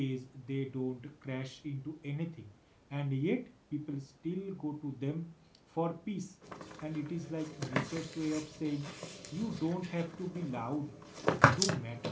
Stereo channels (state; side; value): identical; both; correlation 1.00